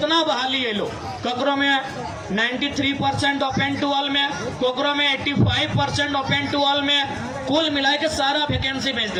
बहाली है लो ककरों में 93% ओपन टू ऑल में कोकरों में 85% ओपन टू ऑल में कुल मिला के सारा वैकेंसी बेच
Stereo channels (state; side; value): identical; both; correlation 1.00